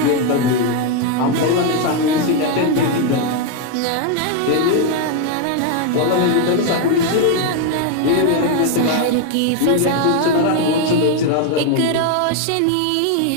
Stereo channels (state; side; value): different; both; correlation 0.01